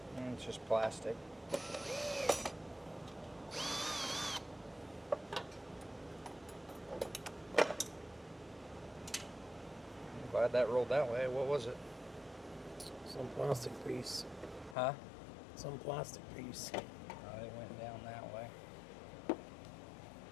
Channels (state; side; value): drops out; right; at 14.8 s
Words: It's just plastic. I'm glad that rolled that way. What was it? Some plastic piece. Huh? Some plastic piece. Oh, it went down that way.